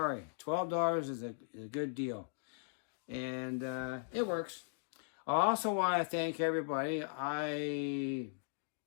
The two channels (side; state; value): right; silent; digital silence